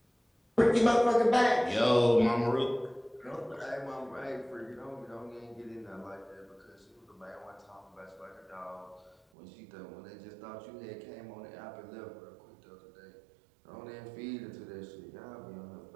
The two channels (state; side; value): drops out; left; at 9.2 s